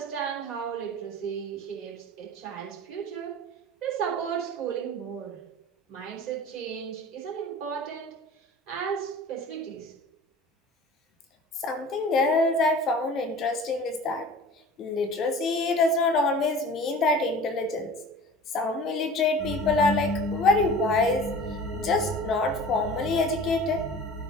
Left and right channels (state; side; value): normal; both; correlation 0.41